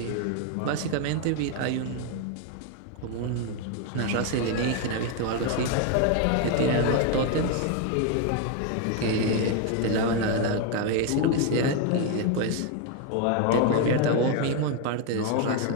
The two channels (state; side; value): different; both; correlation 0.01